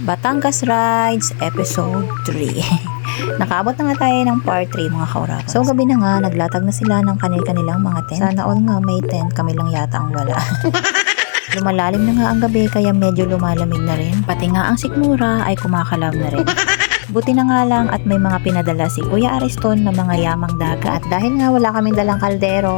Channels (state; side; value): silent; right; digital silence